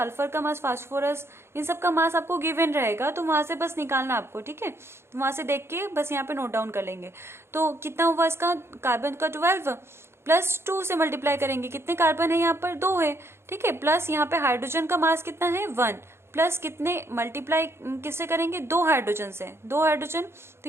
का मास, फास्फोरस, इन सब का मास आपको गिवन रहेगा, तो वहां से बस निकालना आपको, ठीक है। तो वहां से देख के बस यहाँ पे नोट डाउन कर लेंगे। तो कितना हुआ इसका, कार्बन का 12 +2 से मल्टीप्लाई करेंगे, कितने कार्बन है यहाँ पर, 2 है, ठीक है। प्लस यहाँ पे हाइड्रोजन का मास कितना है, 1, प्लस कितने मल्टीप्लाई किससे करेंगे, 2 हाइड्रोजन से, 2 हाइड्रोजन,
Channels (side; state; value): left; late; 0.12 ms